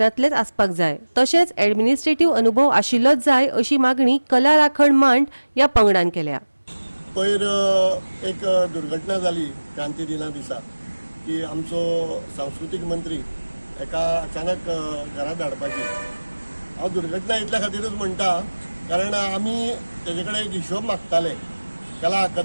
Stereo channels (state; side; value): inverted; both; correlation -1.00